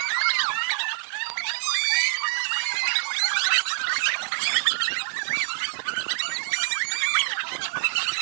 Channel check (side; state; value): left; silent; digital silence